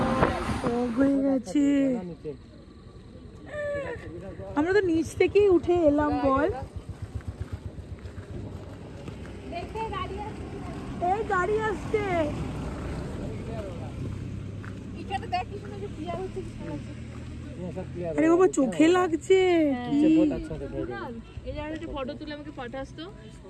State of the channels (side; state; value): both; identical; correlation 1.00